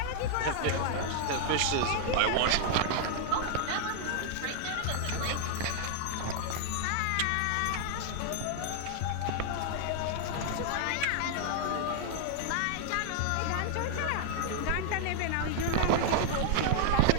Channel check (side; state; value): both; different; correlation -0.01